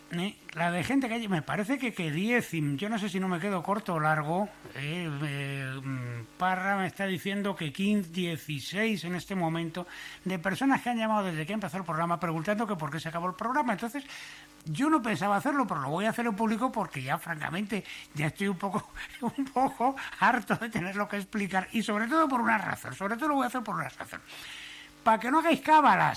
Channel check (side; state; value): both; identical; correlation 1.00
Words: La de gente que me parece que 10, yo no sé si no me quedo corto o largo. Parra me está diciendo que 15, 16 en este momento de personas que han llamado desde que empezó el programa preguntando que por qué se acabó el programa. Entonces yo no pensaba hacerlo, pero lo voy a hacer en público porque ya francamente ya estoy un poco harto de tenerlo que explicar, y sobre todo por una razón. Sobre todo lo voy a hacer por una razón: para que no hagáis